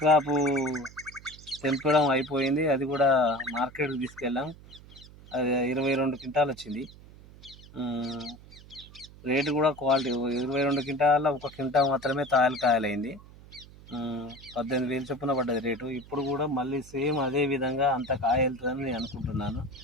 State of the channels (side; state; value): right; noise; hum, 20 dB below the sound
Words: Crop తెంపడం అయిపోయింది. అది కూడా మార్కెట్కి తీసుకెళ్ళాం. అది 22 క్వింటాలు వచ్చింది. రేటు కూడా క్వాలిటీ 22 క్వింటాల 1 క్వింటా మాత్రమే కాయలైంది. 18,000 చొప్పున పడ్డది రేటు. ఇప్పుడు కూడా మళ్ళీ సేమ్ అదే విధంగా అంత కాయ వెళ్తుందని నేను అనుకుంటున్నాను.